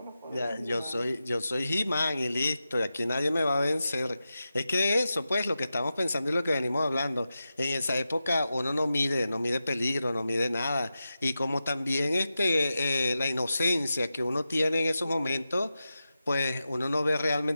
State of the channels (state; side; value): inverted; both; correlation -0.92